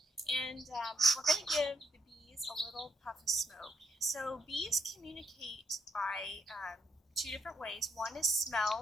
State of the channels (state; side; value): normal; both; correlation 0.76